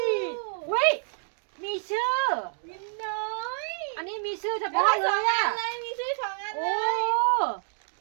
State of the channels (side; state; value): left; silent; digital silence